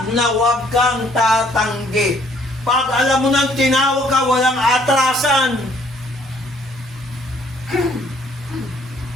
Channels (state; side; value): normal; both; correlation 0.63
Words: na wag kang tatanggi. Pag alam mo nang tinawag ka, walang atrasan.